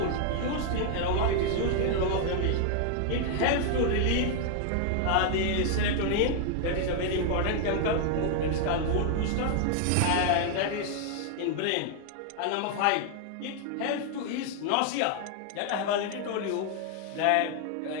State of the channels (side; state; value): both; different; correlation 0.00